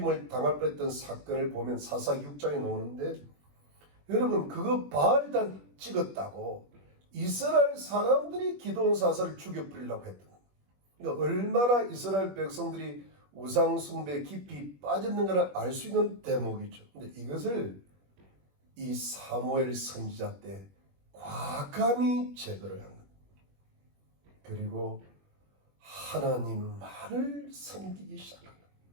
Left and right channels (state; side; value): late; left; 21 ms